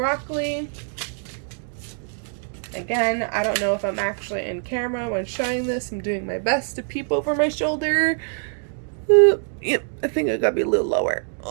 Again, I don't know if I'm actually in camera when showing this. I'm doing my best to peep over my shoulder. Yep, I think I gotta be a little lower.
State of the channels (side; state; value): left; silent; 57 dB below the other